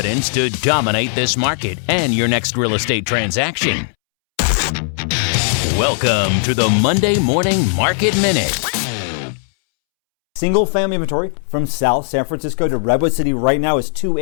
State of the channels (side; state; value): right; silent; 68 dB below the other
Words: to dominate this market and your next real estate transaction. Welcome to the Monday Morning Market Minute. Single family inventory from South San Francisco to Redwood City right now is